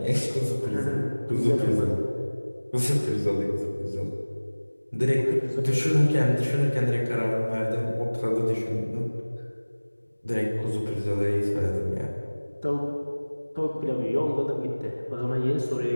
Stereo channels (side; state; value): both; inverted; correlation -1.00